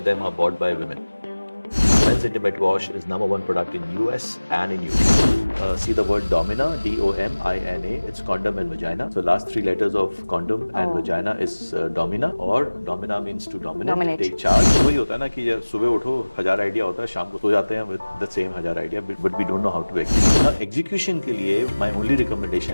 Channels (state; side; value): inverted; both; correlation -1.00